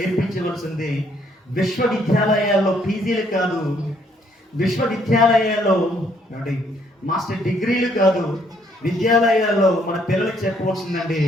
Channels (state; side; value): normal; both; correlation 0.68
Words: విశ్వవిద్యాలయాల్లో పీజీలు కాదు, విశ్వవిద్యాలయాల్లో ఏమండి మాస్టర్ డిగ్రీలు కాదు, విద్యాలయాల్లో మన పిల్లలకి చెప్పవలసిందండి